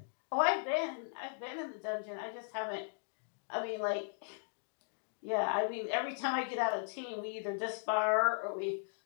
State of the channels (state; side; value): silent; right; digital silence